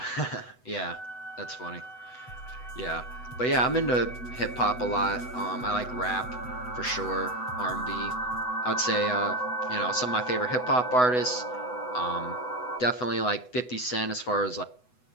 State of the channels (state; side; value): late; right; 8.0 ms